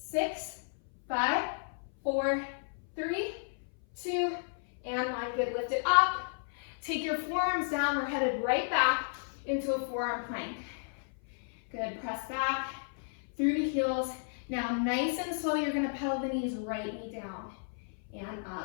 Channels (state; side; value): silent; right; 56 dB below the other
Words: 5, 4, 3, 2, and 1. Good, lift it up. Take your forearms down. We're headed right back into a forearm plank. Good, press back through the heels. Now, nice and slow, you're gonna pedal the knees, right knee down and